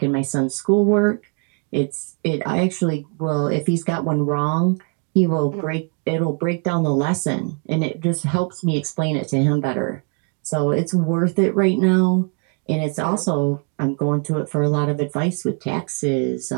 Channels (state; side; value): quieter; left; 36.1 dB